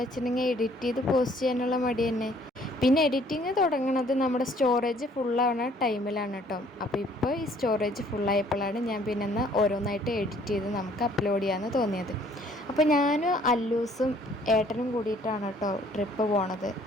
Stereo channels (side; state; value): both; normal; correlation 0.60